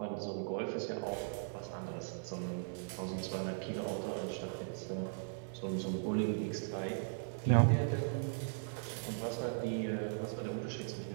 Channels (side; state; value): left; silent; 52 dB below the other